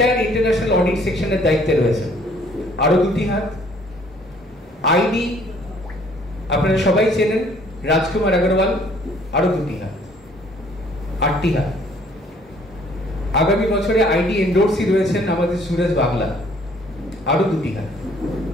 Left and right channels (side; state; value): both; normal; correlation 0.60